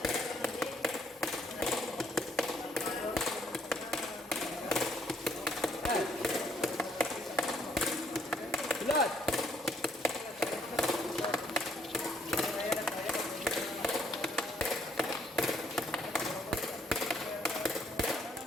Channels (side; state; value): both; normal; correlation 0.68